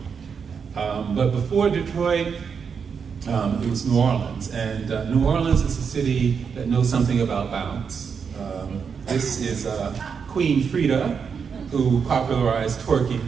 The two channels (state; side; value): quieter; left; 6.3 dB